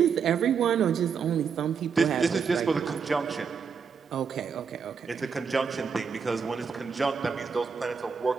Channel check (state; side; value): quieter; left; 6.1 dB